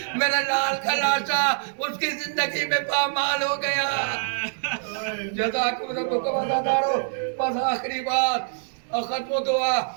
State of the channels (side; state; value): left; silent; digital silence